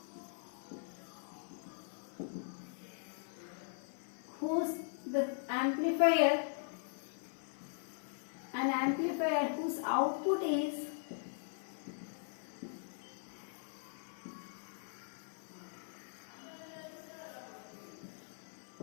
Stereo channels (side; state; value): right; silent; 51 dB below the other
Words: an amplifier whose output is